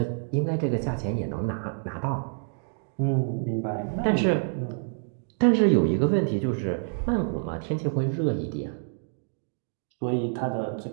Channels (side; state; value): left; silent; digital silence